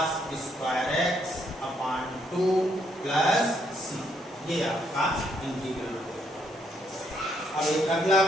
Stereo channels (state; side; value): normal; both; correlation 0.73